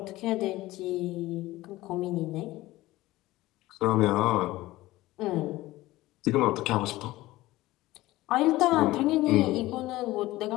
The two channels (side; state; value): right; quieter; 17.7 dB